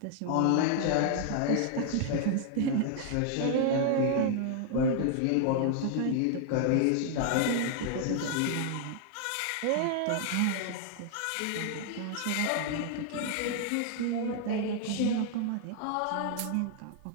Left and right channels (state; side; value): different; both; correlation 0.00